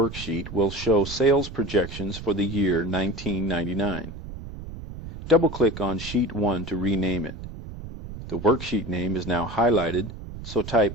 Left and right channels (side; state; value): right; noise; rumble, 11 dB below the sound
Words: will show sales projections for the year 1999. Double-click on Sheet 1 to rename it. The worksheet name is now highlighted, so